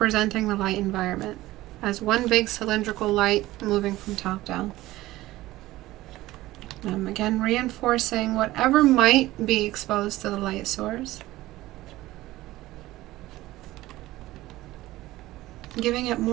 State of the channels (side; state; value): left; quieter; 17.1 dB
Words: the light environment, as one big cylindrical light moving from top down. Again, reinforcing whatever might be exposed to the light source. Giving it